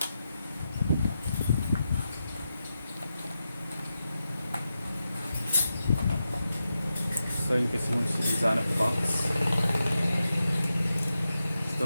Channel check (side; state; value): both; inverted; correlation -0.89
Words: So in case you want to design a box, it's